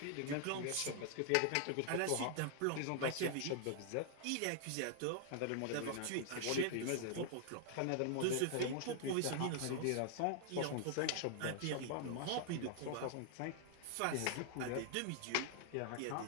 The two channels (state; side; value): different; both; correlation 0.00